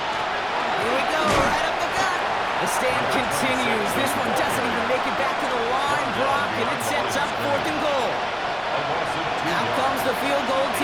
Here we go, right up the gut. The stand continues. This one doesn't even make it back to the line, Brock, and it sets up fourth and goal. Out comes the field goal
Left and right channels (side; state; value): both; identical; correlation 1.00